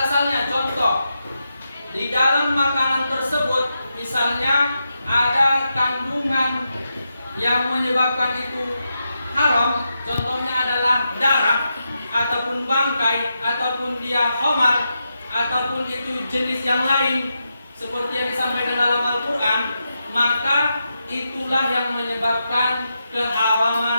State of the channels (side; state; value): both; inverted; correlation -0.86